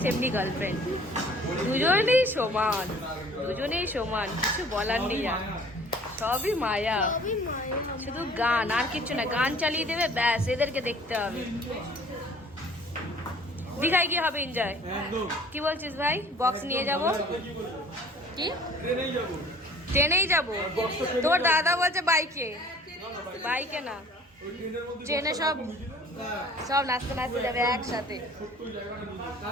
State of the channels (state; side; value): normal; both; correlation 0.51